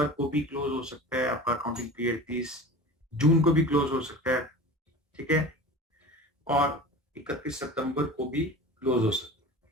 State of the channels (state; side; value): normal; both; correlation 0.35